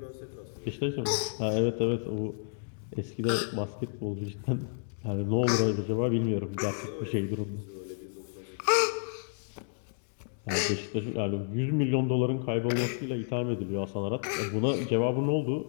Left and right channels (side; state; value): right; silent; digital silence